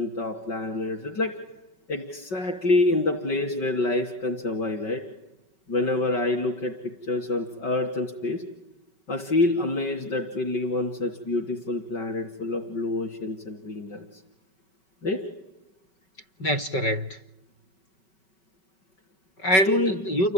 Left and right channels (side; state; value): right; late; 5.3 ms